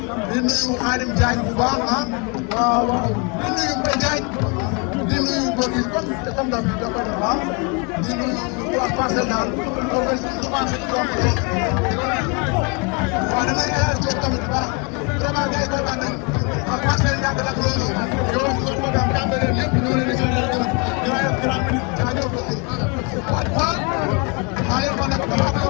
di nuyu Khadim Diagne bu baax ah waaw waaw di nuyu Mbaye Diagne di nuyu Gorgui comme daal dafa baax di nuyu waa Parcelles daal comme que commencé di doon ko waaw damay élargir tamit bu baax vraiment gars yi kontaan nañu waa Parcelles ñàkk la loolu yow ñu ko daan tàmbalee yëpp ñoo leen di gërëm dinaa yor 30 minutes jaajëf waaw maa yor ma nag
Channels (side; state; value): right; quieter; 32.5 dB